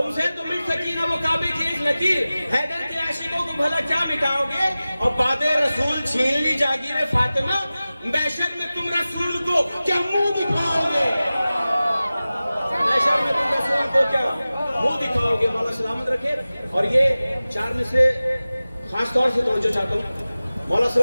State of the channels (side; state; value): both; inverted; correlation -0.97